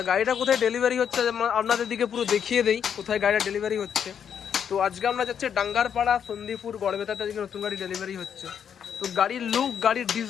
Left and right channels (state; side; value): quieter; right; 8.1 dB